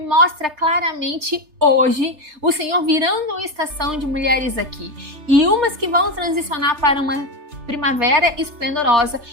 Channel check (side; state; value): left; late; 3.3 ms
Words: claramente hoje, o Senhor virando uma estação de mulheres aqui. E umas que vão transicionar para uma primavera esplendorosa